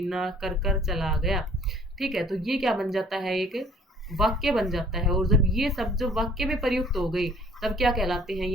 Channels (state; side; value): normal; both; correlation 0.56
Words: कर कर चला गया, ठीक है, तो ये क्या बन जाता है, एक वाक्य बन जाता है। और जब ये सब जो वाक्य में प्रयुक्त हो गई तब क्या कहलाते हैं,